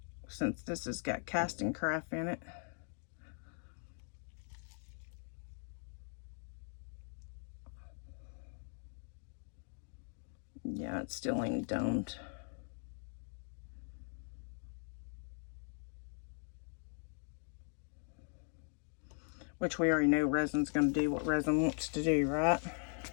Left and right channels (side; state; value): right; silent; 51 dB below the other